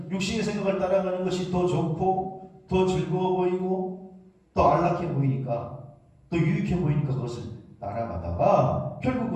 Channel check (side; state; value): both; identical; correlation 1.00